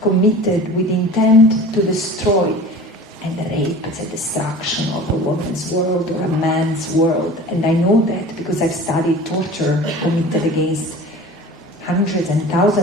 committed with intent to destroy. And the rape is a destruction of a woman's world or a man's world. And I know that because I've studied torture committed against hundreds and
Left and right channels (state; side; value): normal; both; correlation 0.40